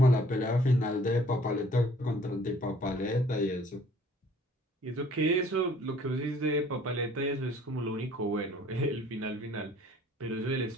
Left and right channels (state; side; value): normal; both; correlation 0.56